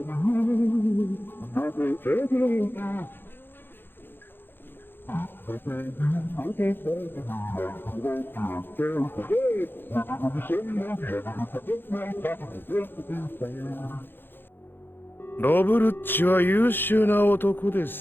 ロブルッチは優秀な男で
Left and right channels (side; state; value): right; late; 0.10 ms